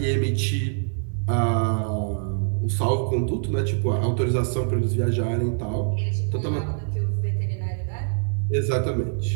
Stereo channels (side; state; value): left; silent; 61 dB below the other